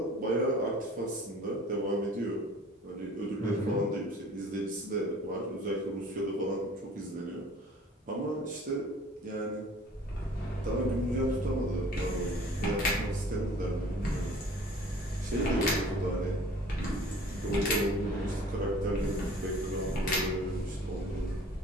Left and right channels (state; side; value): normal; both; correlation 0.49